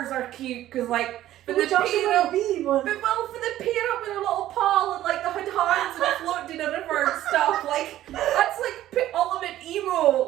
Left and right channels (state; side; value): quieter; left; 13.6 dB